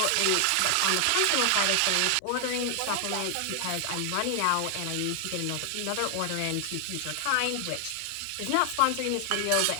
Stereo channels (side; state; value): both; different; correlation 0.00